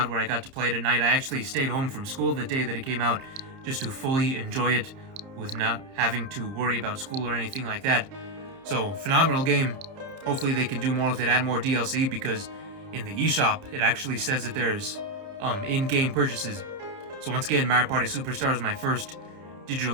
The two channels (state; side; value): late; left; 30 ms